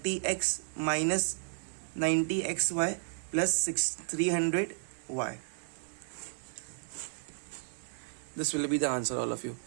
minus 90xy plus 300 y. This will be the answer, all of you.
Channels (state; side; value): silent; left; 56 dB below the other